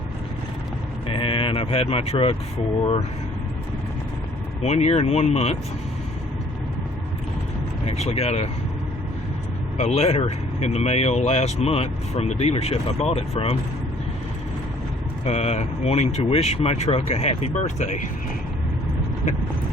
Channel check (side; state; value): both; normal; correlation 0.58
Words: and I've had my truck for 1 year and 1 month. I actually got a letter in the mail last month from the dealership I bought it from, wanting to wish my truck a happy birthday.